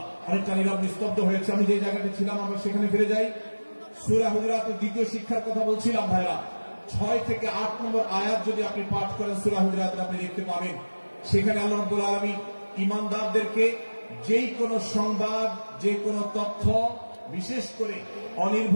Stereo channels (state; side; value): inverted; both; correlation -1.00